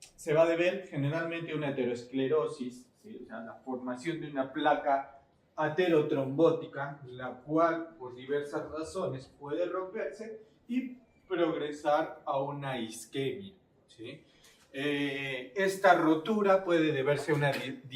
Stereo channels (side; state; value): both; identical; correlation 1.00